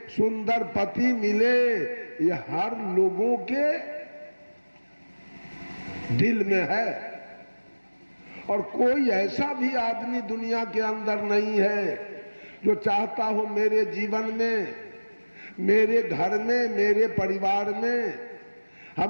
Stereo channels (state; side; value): inverted; both; correlation -1.00